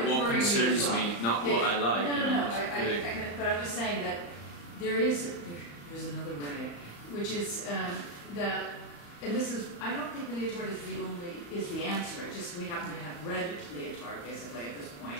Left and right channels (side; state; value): right; late; 35 ms